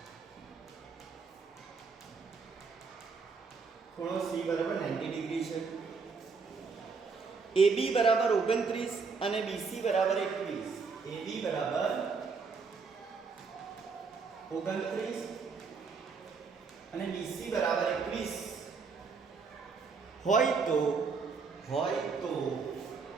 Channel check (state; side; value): quieter; left; 5.0 dB